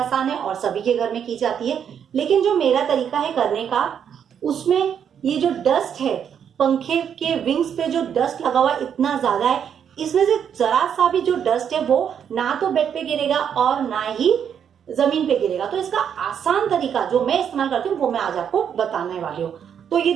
है और सभी के घर में की जाती है, लेकिन जो मेरा तरीका है करने का, उसमें ये जो डस्ट है, पंखे के विंग्स पे जो डस्ट लगा हुआ इतना ज्यादा है, इसमें से जरा सा भी जो डस्ट है वो ना तो बेड पे गिरेगा और ना ही जमीन पे गिरेगा। तो इसका आसान तरीका जो मैं इस्तेमाल करती हूँ वो मैं आज आपको बताने वाली हूँ। तो ये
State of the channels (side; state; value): left; quieter; 8.2 dB